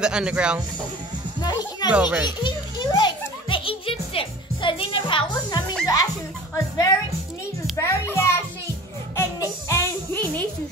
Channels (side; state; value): both; normal; correlation 0.42